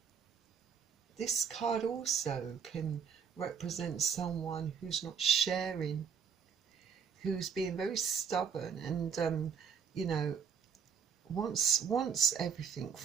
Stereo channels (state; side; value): quieter; left; 7.0 dB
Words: this card also can represent someone who's not sharing, who's being very stubborn and you know, wants everything